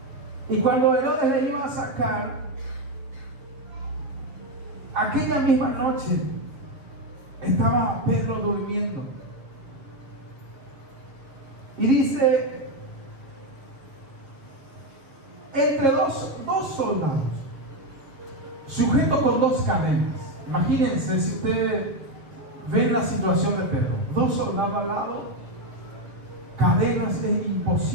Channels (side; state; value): left; late; 7.2 ms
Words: y cuando Herodes le iba a sacar, aquella misma noche estaba Pedro durmiendo. Y dice, entre dos soldados, sujetos con dos cadenas. Imagínense si ustedes ven la situación de Pedro, dos soldados al lado, cadenas, es